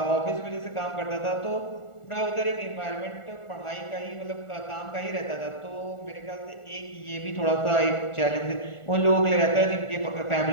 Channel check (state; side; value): late; right; 1.4 ms